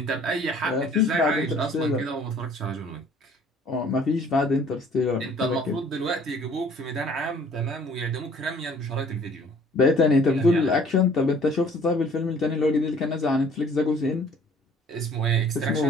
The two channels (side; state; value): both; normal; correlation 0.55